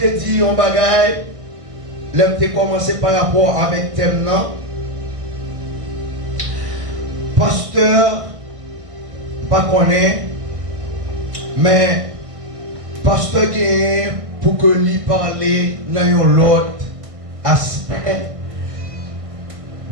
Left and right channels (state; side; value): late; left; 1.6 ms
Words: dit un bagage l'homme te commencé par rapport avec thème non pasteur pas connaît mais pasteur gagne pour que lui parler dans l'autre aspect